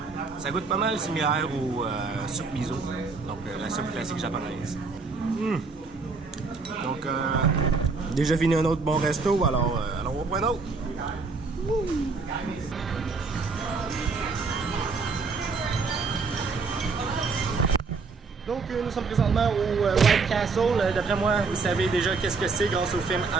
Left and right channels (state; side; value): quieter; left; 4.4 dB